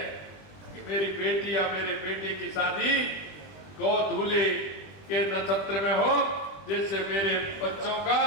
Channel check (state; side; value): late; right; 20 ms